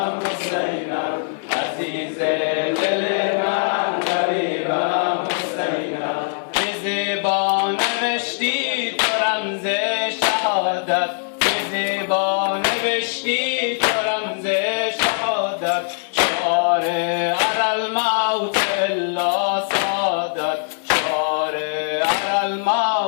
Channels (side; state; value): right; silent; 65 dB below the other